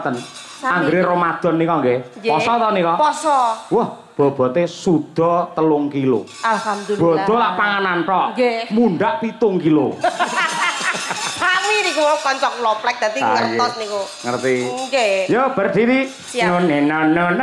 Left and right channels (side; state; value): both; identical; correlation 1.00